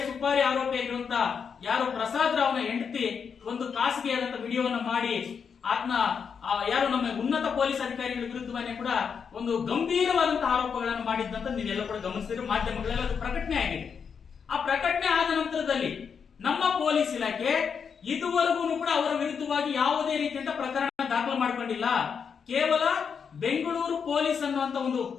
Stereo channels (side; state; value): right; quieter; 6.5 dB